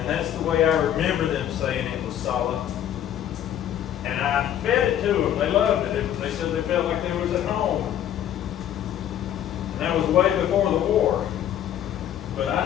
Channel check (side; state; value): right; quieter; 10.8 dB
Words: that's the way I remember them saying it was sala. And I fed it to them. They loved it. They said they felt like they was at home. And that was way before the war. But